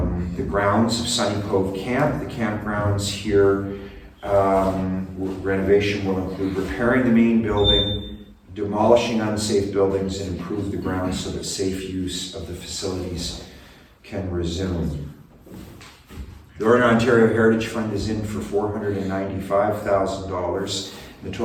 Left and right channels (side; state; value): both; identical; correlation 1.00